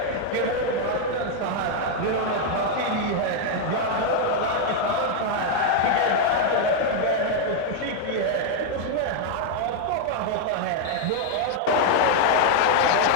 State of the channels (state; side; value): different; both; correlation 0.00